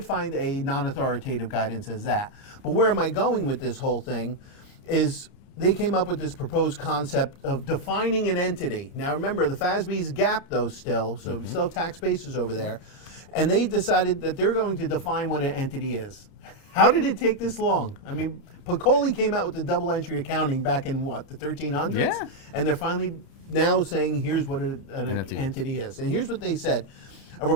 find a non-authoritative guidance as that. But where am I going with this whole thing is they came up with this proposed concept of defining an entity. Now remember, the FASB's GAAP though still, so we still have tax basis over there, and they decided that they're going to define what an entity is. How did it take this long? I mean, Piccoli came out with the double entry accounting back in what, the 1300s? Yeah. And they're finally now saying here's what an entity is. And here's what they said. A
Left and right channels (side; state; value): right; late; 30 ms